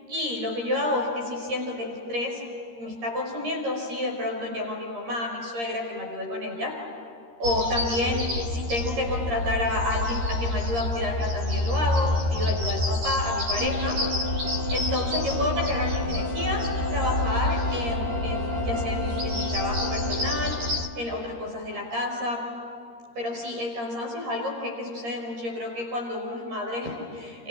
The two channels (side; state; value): left; late; 13 ms